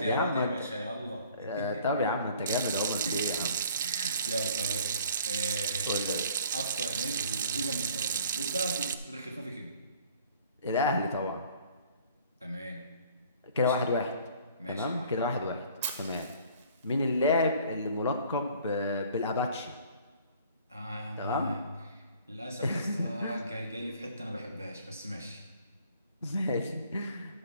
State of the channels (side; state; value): both; inverted; correlation -0.53